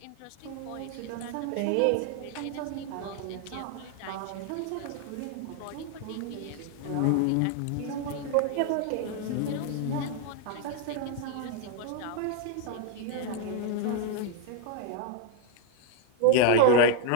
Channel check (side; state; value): both; different; correlation 0.00